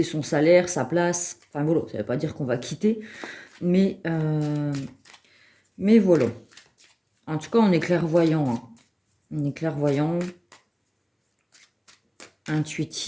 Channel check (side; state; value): both; identical; correlation 1.00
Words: son salaire, sa place. Enfin voilà, ça ne veut pas dire qu'on va quitter, mais, voilà. En tout cas, on est clairvoyant, hein. On est clairvoyant,